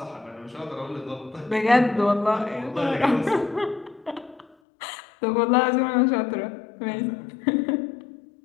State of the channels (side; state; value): right; drops out; at 4.5 s